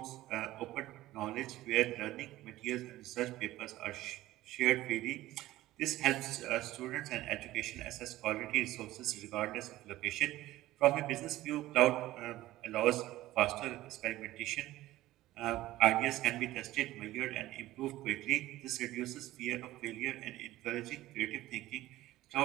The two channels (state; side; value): quieter; left; 16.1 dB